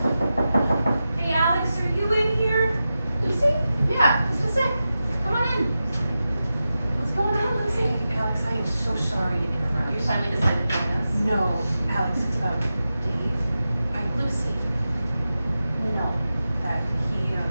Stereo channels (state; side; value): inverted; both; correlation -0.92